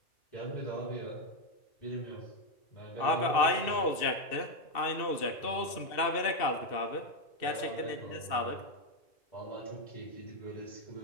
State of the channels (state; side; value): late; right; 2.6 ms